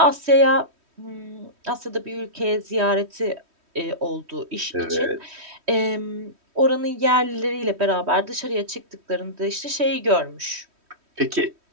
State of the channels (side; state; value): left; late; 3.1 ms